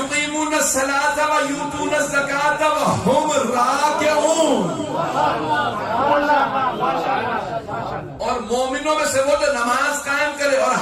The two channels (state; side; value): identical; both; correlation 1.00